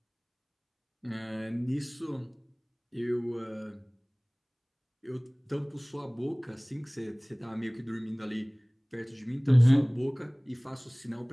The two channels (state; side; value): identical; both; correlation 1.00